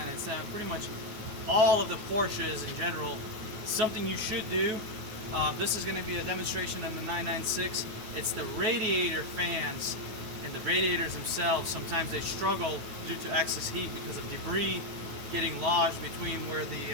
pretty much all of the Porsches in general. Something you should do. This is going to be a demonstration on the 996. It's the radiator fans and the radiators themselves. Sometimes they struggle due to excess heat because of debris getting lodged between where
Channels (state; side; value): late; left; 9.2 ms